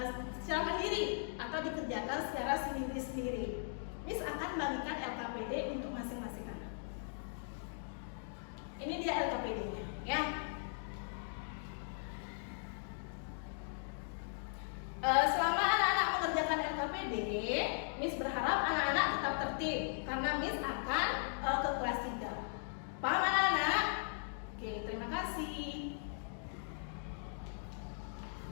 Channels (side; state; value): right; silent; digital silence